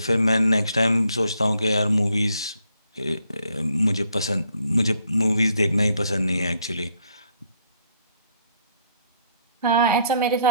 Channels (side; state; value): both; inverted; correlation -0.70